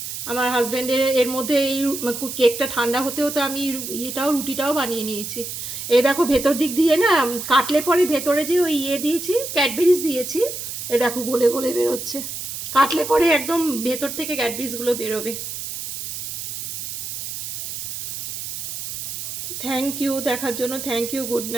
আমার হাজব্যান্ডের এর মধ্যে এই কেকটা ঠান্ডা হতে হতে আমি রুটিটাও বানিয়ে নিয়েছি। এই দেখো ভেতর দিক দিয়ে না কাটলে পরে ভেতরে যে ওই দিয়েছি, ক্যাডবেরিজ দিয়েছি, এ দেখো গলে গলে বেরোচ্ছে। কাটলে পরে একদম ভেতর থেকে ক্যাডবেরিজগুলো বেরোবে। থ্যাংক ইউ দেখার জন্য, thank you. Good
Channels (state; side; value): noise; right; hiss, 6 dB below the sound